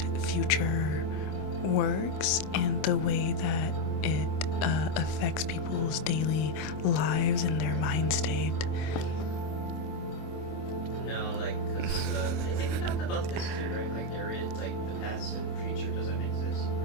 future works, and the way that it affects people's daily lives and their mind state. No, like, cause, I think we talked about this too, right? Like, there is, like, the past and future doesn't exist.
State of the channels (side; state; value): right; late; 26 ms